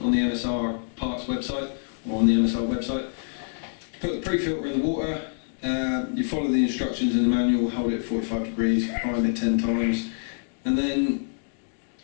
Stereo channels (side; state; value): right; silent; digital silence